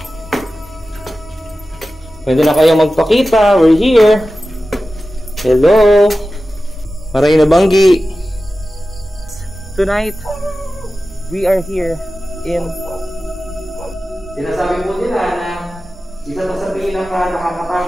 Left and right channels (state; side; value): normal; both; correlation 0.94